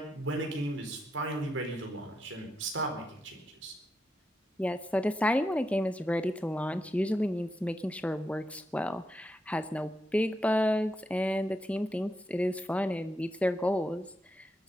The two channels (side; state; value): both; normal; correlation 0.84